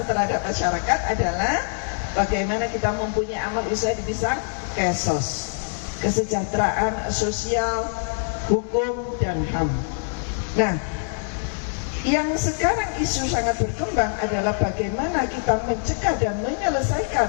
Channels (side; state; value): right; silent; digital silence